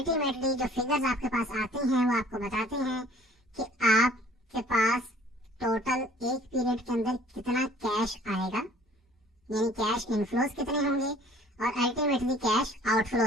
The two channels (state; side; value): normal; both; correlation 0.54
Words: जो फिगर्स आपके पास आते हैं वो आपको बताते हैं कि आपके पास टोटल एक पीरियड के अंदर कितना कैश आएगा, यानी कैश इनफ्लोज कितने होंगे और अल्टीमेटली कैश